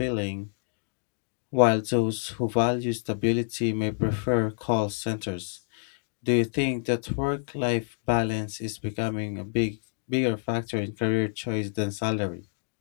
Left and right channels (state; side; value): silent; right; digital silence